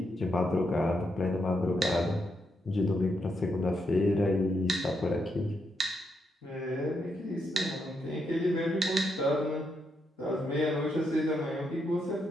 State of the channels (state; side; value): normal; both; correlation 0.80